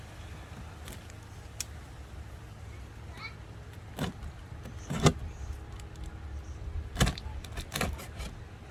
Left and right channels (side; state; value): both; identical; correlation 1.00